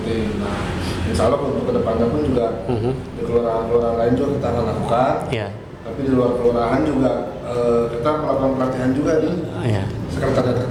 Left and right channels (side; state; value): both; identical; correlation 1.00